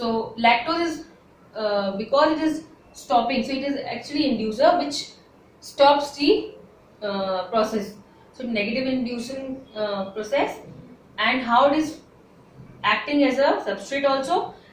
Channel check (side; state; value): both; identical; correlation 1.00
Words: lactose is because it is stopping, so it is actually inducer which stops the process. So negative inducing process, and how it is acting as a substrate also,